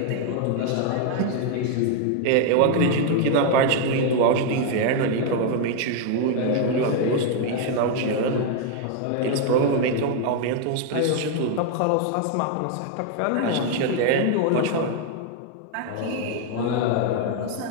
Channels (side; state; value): both; different; correlation 0.01